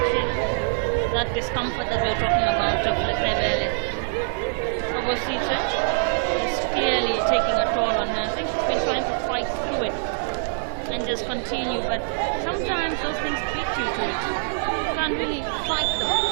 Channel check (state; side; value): silent; left; digital silence